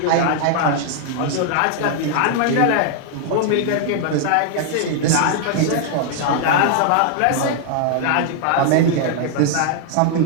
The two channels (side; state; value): both; different; correlation 0.00